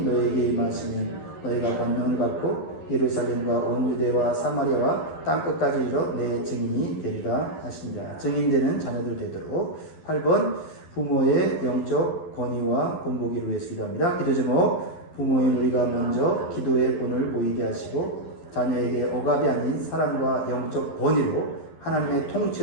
너에게 임하시면 너희가 권능을 받고 예루살렘과 온 유대와 사마리아와 땅끝까지 이르러 내 증인이 되리라 하십니다. 증인되는 자녀들 되도록. 8번 부모의 영적 권위와 본보기를 위해서 기도합니다. 기도 제목, 부모인 우리가 먼저 기도의 본을 보이게 하시고 자녀에게 억압이 아닌 사랑과 영적 권위로 하나님의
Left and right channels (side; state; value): right; late; 12 ms